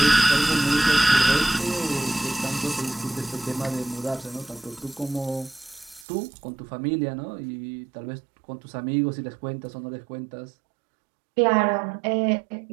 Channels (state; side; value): drops out; left; at 6.1 s